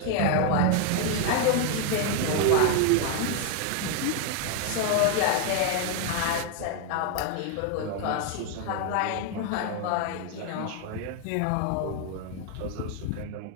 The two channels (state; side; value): different; both; correlation 0.01